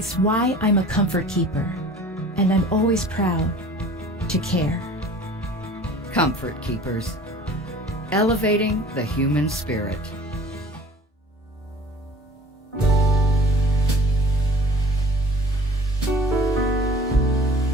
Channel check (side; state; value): both; normal; correlation 0.47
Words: why I'm a comfort keeper, and I'm always proud to care. Comfort Keepers, elevating the human spirit.